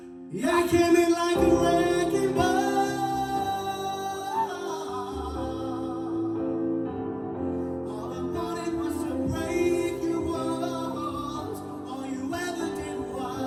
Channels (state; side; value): identical; both; correlation 1.00